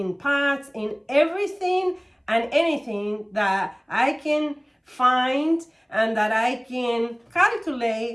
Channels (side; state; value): both; identical; correlation 1.00